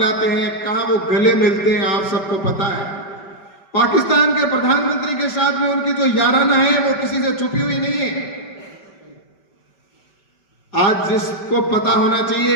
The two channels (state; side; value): late; right; 5.2 ms